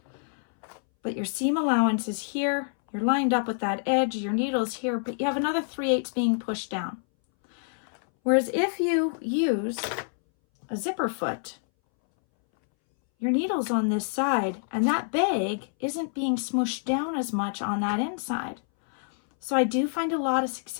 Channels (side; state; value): right; silent; 60 dB below the other